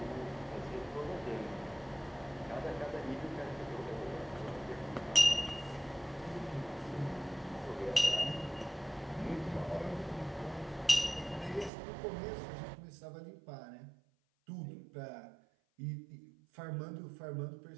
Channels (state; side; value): drops out; left; at 11.7 s